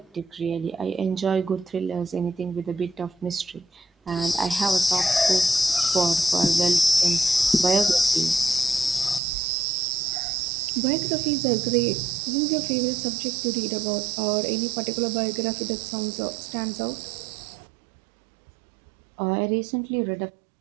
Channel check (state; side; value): drops out; left; at 9.2 s